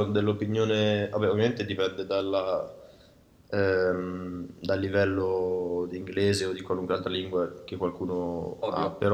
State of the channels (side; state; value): both; identical; correlation 1.00